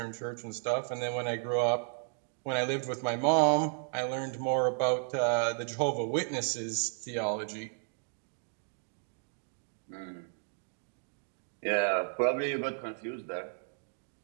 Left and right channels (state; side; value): silent; left; 55 dB below the other